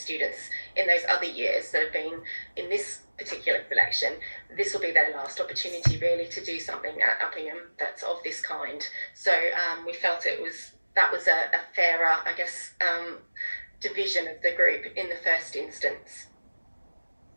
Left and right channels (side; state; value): both; inverted; correlation -1.00